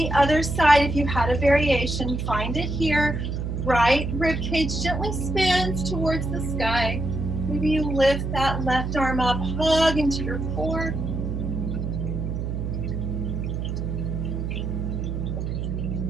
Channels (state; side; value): noise; right; hum, 3 dB below the sound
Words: other side, if you had a variation, find it here. Right rib cage gently spins towards the sky. Maybe you lift that left arm up, hug into your core.